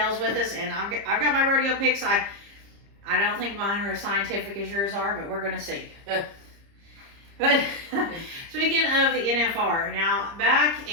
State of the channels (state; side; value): late; left; 30 ms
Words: with us. And I've got my rodeo picks. I don't think mine are as scientific as yours are, but we're going to see. But speaking of the NFR, now back